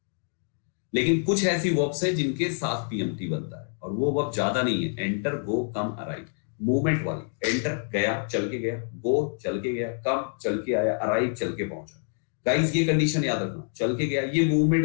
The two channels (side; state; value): right; silent; 60 dB below the other